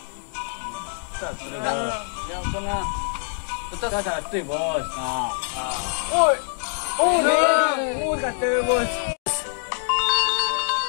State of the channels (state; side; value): silent; right; digital silence